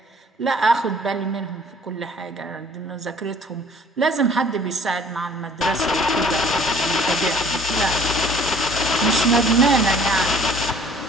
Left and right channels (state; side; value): normal; both; correlation 0.54